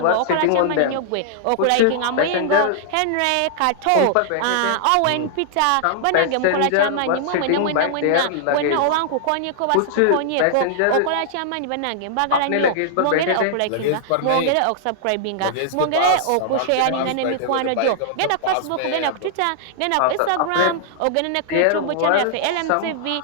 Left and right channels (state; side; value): different; both; correlation -0.01